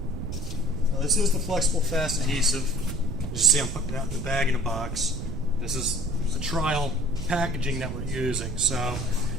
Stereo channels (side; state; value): right; noise; rumble, 5 dB below the sound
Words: This is the flexible fast adhesive. You see I'm putting it out in the bag in a box. This is a trial packaging that we're using. So,